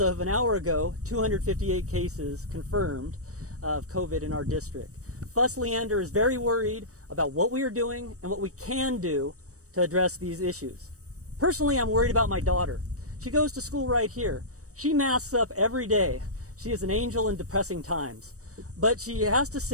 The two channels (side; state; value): left; late; 0.65 ms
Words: of an hour ago, 258 cases confirmed of COVID in our district. FUS Leander is very worried about what we are doing and what we can do to address these issues. Personally, I'm worried about my daughter. She goes to school right here. She masks up every day. She is an angel in depressing times. But she has to